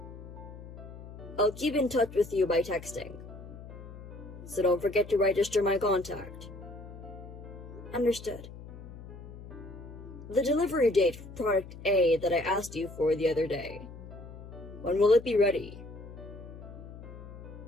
I'll keep in touch with you by texting. So don't forget to register my contact. Understood. The delivery date for product A that I asked you for the other day. When will it be ready?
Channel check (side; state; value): left; noise; hum, 14 dB below the sound